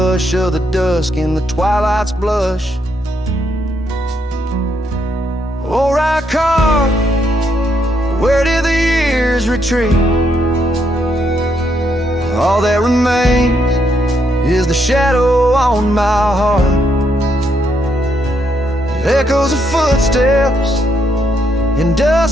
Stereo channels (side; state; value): both; normal; correlation 0.76